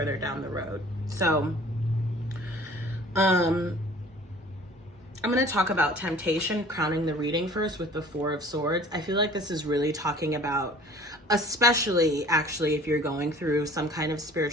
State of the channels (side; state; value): both; normal; correlation 0.49